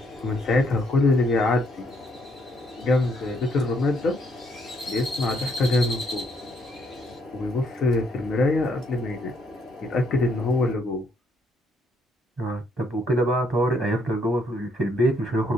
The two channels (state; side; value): normal; both; correlation 0.71